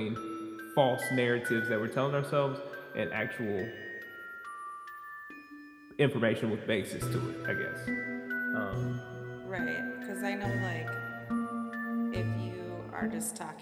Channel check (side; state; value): both; identical; correlation 1.00